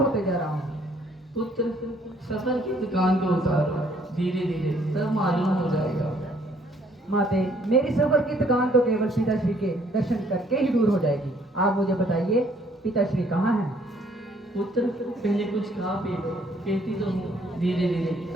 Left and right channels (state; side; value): normal; both; correlation 0.63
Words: जा रहा हूँ। पुत्र, सफर की दुकान को उतारो, धीरे धीरे सब मालूम हो जाएगा। माते, मेरी सफर की थकान तो केवल पिताश्री के दर्शन करके ही दूर हो जाएगी। आप मुझे बताइए, पिताश्री कहाँ हैं? पुत्र, पहले कुछ खा पी लो, कहती तो हूँ धीरे धीरे